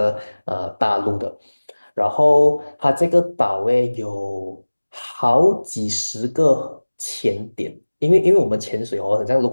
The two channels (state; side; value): inverted; both; correlation -1.00